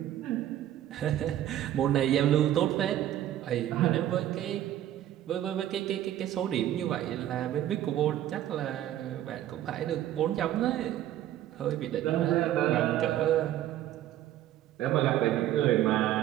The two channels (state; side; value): quieter; left; 12.4 dB